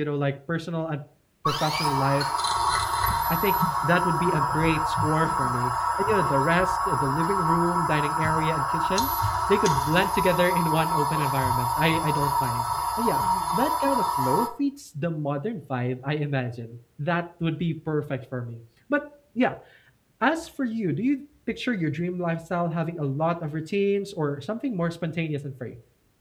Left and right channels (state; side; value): identical; both; correlation 1.00